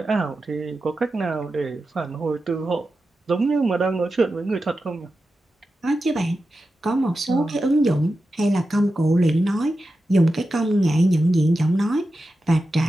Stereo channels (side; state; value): both; normal; correlation 0.91